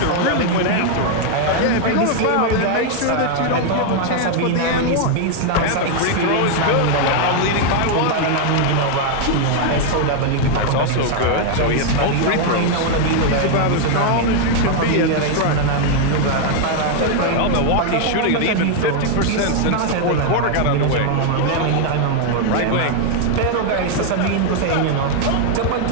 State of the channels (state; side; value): different; both; correlation 0.00